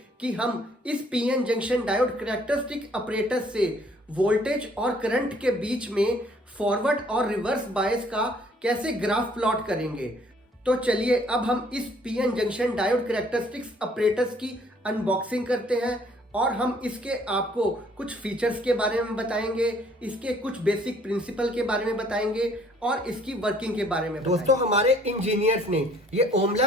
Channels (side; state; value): both; normal; correlation 0.61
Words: कि हम इस PN junction diode characteristic operators से वोल्टेज और करंट के बीच में फॉरवर्ड और रिवर्स बायस का कैसे ग्राफ प्लॉट करेंगे। तो चलिए अब हम इस PN junction diode characteristics operators की अनबॉक्सिंग करते हैं और हम इसके आपको कुछ फीचर्स के बारे में बताएंगे, इसके कुछ बेसिक प्रिंसिपल के बारे में बताएंगे और इसकी वर्किंग के बारे में बताएंगे। दोस्तों, हमारे इंजीनियर्स ने ये Om